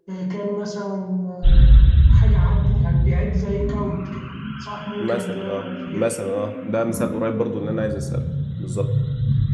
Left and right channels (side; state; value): both; identical; correlation 1.00